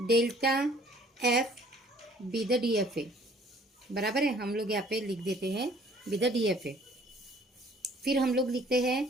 delta F be the DFA. बराबर है, हम लोग यहाँ पे लिख देते हैं बी द डीएफए। फिर हम लोग लिखते हैं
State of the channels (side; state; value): both; normal; correlation 0.56